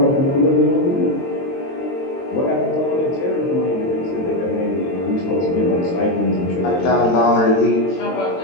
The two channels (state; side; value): late; right; 22 ms